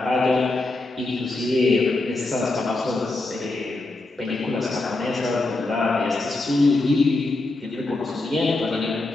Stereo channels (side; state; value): right; quieter; 3.0 dB